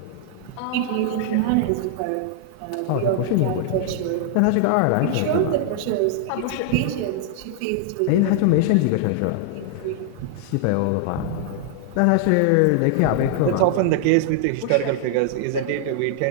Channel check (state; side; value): different; both; correlation -0.01